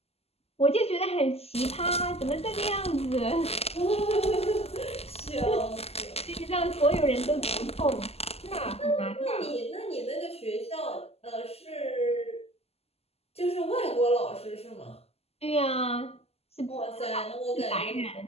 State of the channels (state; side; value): late; right; 0.29 ms